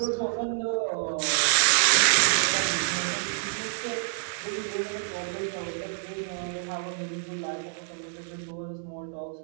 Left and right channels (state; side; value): silent; left; digital silence